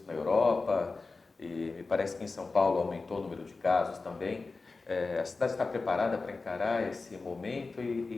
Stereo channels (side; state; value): right; quieter; 3.9 dB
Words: na Europa e me parece que em São Paulo aumentou o número de casos também. A cidade está preparada para encarar esse momento